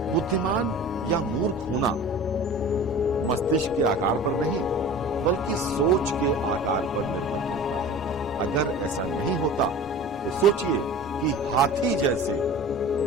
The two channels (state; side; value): normal; both; correlation 0.38